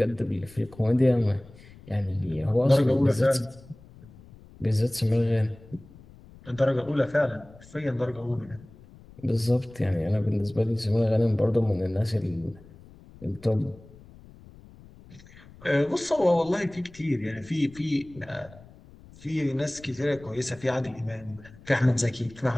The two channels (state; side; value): noise; left; rumble, 22 dB below the sound